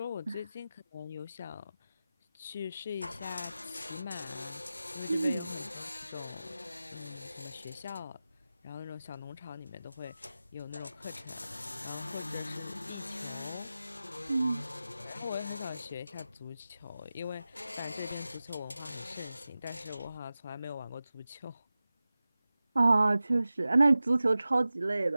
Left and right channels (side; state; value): both; inverted; correlation -0.95